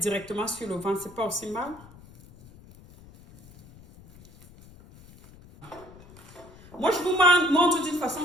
directement sur le ventre. C'est pas aussi mal. Moi, je vous montre d'une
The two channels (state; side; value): noise; left; rumble, 22 dB below the sound